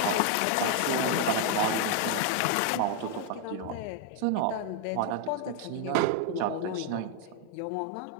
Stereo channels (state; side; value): different; both; correlation 0.00